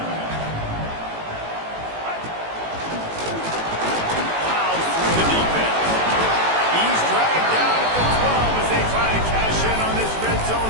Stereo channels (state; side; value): late; left; 18 ms